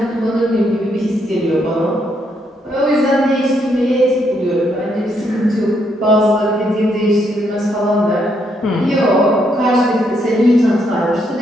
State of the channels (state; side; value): normal; both; correlation 0.75